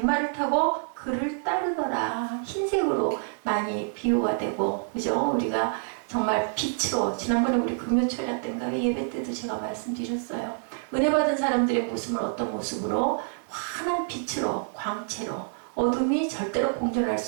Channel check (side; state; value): left; silent; 60 dB below the other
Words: 타고 그를 따르더라. 흰색으로 많이 비유가 되고, 그죠? 우리가 정말 빛으로, 지난번에 우리 금요철야 때인가 예배 때도 제가 말씀드렸어요. 은혜 받은 사람들의 모습은 어떤 모습으로? 환한 빛으로, 광채로, 어둠이 절대로 공존할